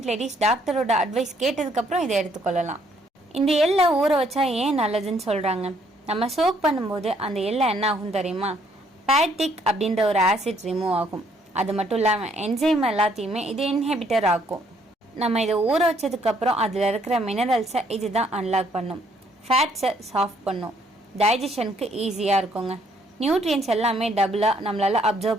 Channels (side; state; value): both; normal; correlation 0.67